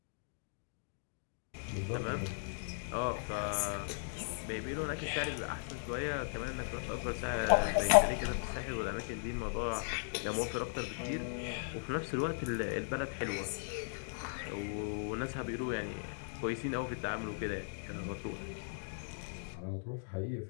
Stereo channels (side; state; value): right; silent; digital silence